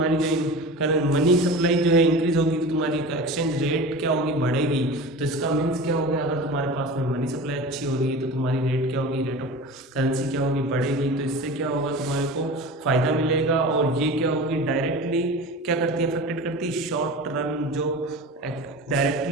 जो मनी सप्लाई जो है इंक्रीज होगी तो तुम्हारी एक्सचेंज रेट क्या होगी? बढ़ेगी। तो इसका मीन्स क्या हो गया? अगर तुम्हारे पास में मनी सप्लाई अच्छी हो रही है तो तुम्हारी रेट क्या होगी? रेट ऑफ करेंसी क्या होगी? बढ़ेगी। तो इससे क्या होगा? तुम्हारे को फायदा मिलेगा। और ये क्या होगी? डायरेक्टली क्या करती है, अफेक्टेड करती है शॉर्ट रन, जो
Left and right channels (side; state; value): both; normal; correlation 0.33